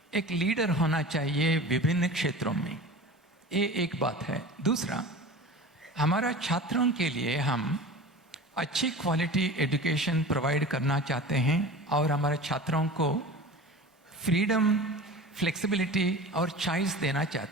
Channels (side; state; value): both; normal; correlation 0.36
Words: एक लीडर होना चाहिए विभिन्न क्षेत्रों में। ये एक बात है। दूसरा, हमारा छात्रों के लिए हम अच्छी क्वालिटी एजुकेशन प्रोवाइड करना चाहते हैं और हमारे छात्रों को फ्रीडम, फ्लेक्सिबिलिटी और चॉइस देना